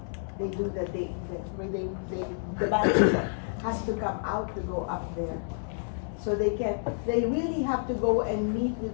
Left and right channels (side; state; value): right; silent; 58 dB below the other